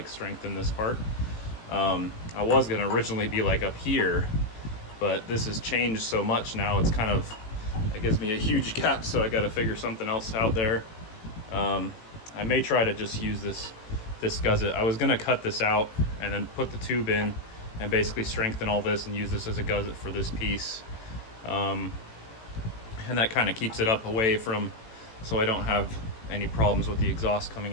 strengthen this part. I was gonna originally be like up here, but this has changed so much now, it's kind of, it gives me a huge gap, so I got to figure something else out there. I may try to just use this gusset. I was going to cut this out and then put the tube in and basically strengthen all this and use this as a gusset for this piece. And that kind of keeps it up away from, so I don't have any problems with the exhaust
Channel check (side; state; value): right; late; 18 ms